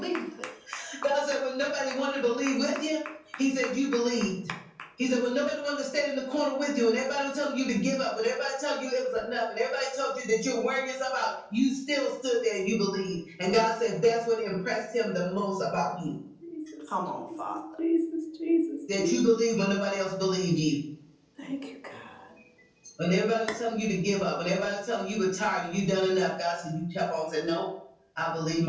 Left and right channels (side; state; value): both; identical; correlation 1.00